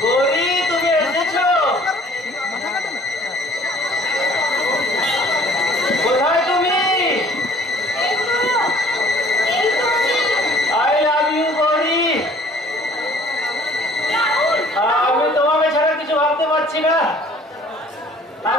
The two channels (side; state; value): both; normal; correlation 0.53